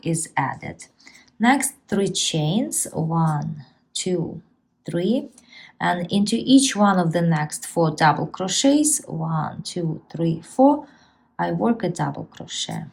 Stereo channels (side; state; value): both; identical; correlation 1.00